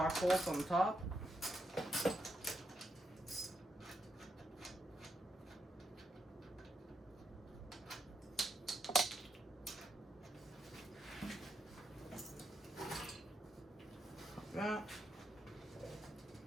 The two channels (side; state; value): both; normal; correlation 0.81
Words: bolts on the top. Like that.